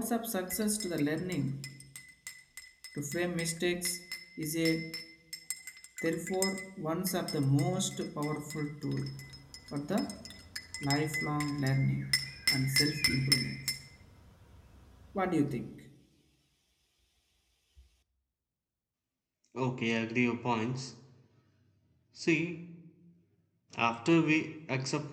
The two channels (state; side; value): identical; both; correlation 1.00